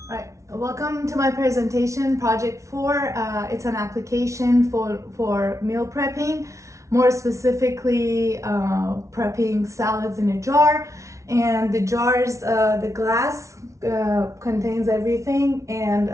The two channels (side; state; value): left; late; 0.14 ms